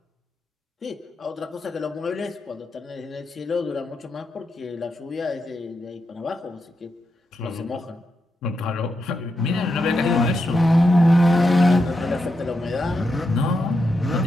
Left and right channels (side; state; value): both; normal; correlation 0.85